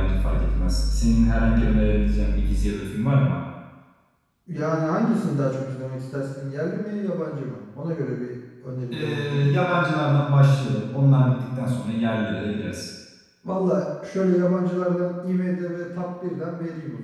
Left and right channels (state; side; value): identical; both; correlation 1.00